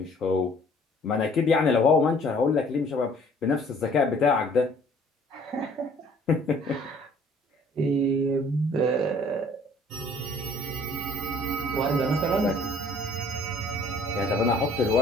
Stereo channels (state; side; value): normal; both; correlation 0.56